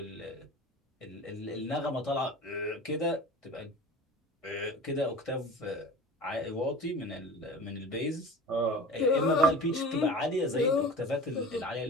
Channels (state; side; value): normal; both; correlation 0.37